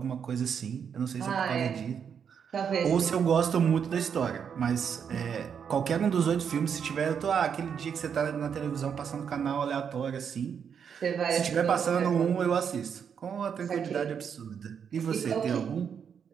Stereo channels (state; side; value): quieter; left; 7.3 dB